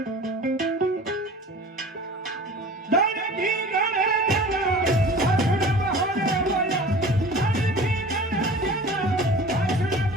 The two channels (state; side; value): normal; both; correlation 0.41